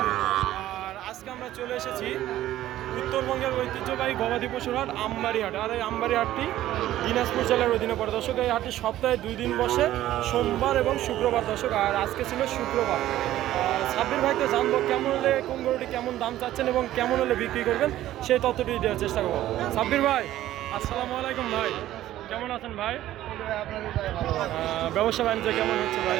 আর আজকে আমরা চলে এসেছি উত্তরবঙ্গের ঐতিহ্যবাহী গবাদি পশুর হাট আমবাড়ি হাট। আর এই আমবাড়ি হাটটি দিনাজপুর জেলার অধীনে পড়ে দর্শক। এই হাটটি সপ্তাহে 2 দিন বসে, সোমবার এবং শুক্রবার দর্শক। আর আজকে ছিল শুক্রবার। সাব্বির ভাইকে জানবো কেমন হলে কোন গরুটি কেমন দাম চাচ্ছেন এবং কেমন হলে বিক্রি করবেন সেই তথ্যটি দেওয়ার চেষ্টা করবো। সাব্বির ভাই আসসালামু আলাইকুম ভাই, কেমন আছেন ভাই? ব্যবসা বাণিজ্য কেমন হচ্ছে ভাই?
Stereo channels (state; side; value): quieter; left; 13.8 dB